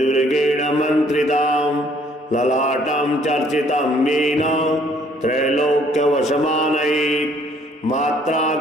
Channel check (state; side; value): normal; both; correlation 0.62